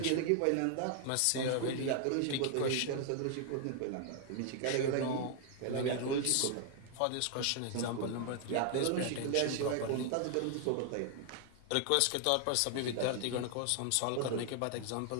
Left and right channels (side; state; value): both; different; correlation 0.00